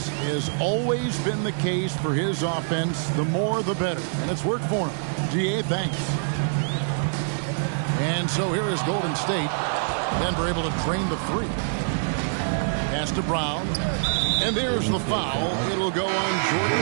has always been the case for his offense, the more the better. And it's worked for him. GA, thanks. And so here is Golden State. Denver able to drain the 3. Pass to Brown. And there's the foul. It'll go on Jordan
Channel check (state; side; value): silent; left; digital silence